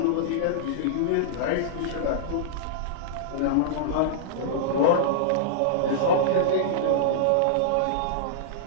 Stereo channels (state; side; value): different; both; correlation -0.02